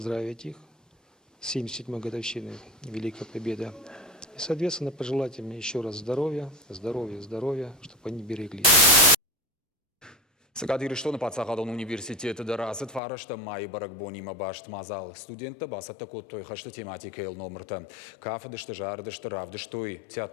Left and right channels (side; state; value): right; drops out; at 13.0 s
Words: их с 77-й годовщиной Великой Победы. И, соответственно, пожелать им еще раз здоровья, здоровья, здоровья, чтобы они береглись. Сакадирыштон пацахадон университеты дарасыт фарашта май баракбонима башт мазал. Студентта басатта коттой хашта тематика ел номерта. Кафедышты жардышты равдыштой